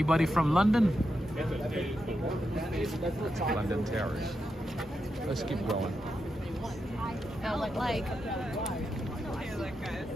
from London? London Terrace. Let's keep going. Like.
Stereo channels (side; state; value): both; normal; correlation 0.86